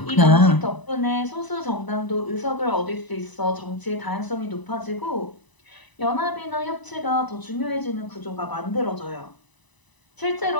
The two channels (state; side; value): late; right; 1.0 ms